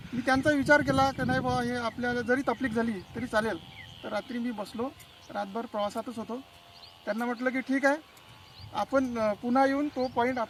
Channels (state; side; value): identical; both; correlation 1.00